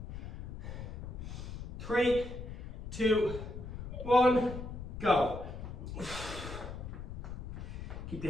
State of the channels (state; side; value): noise; left; rumble, 8 dB below the sound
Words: 3, 2, 1, go. Keep